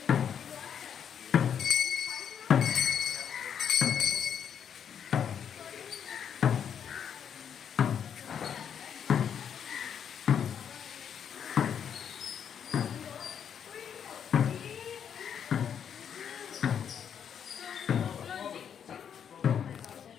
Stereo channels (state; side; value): quieter; right; 8.2 dB